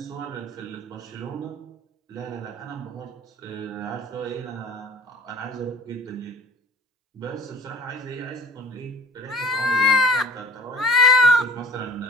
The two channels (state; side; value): normal; both; correlation 0.43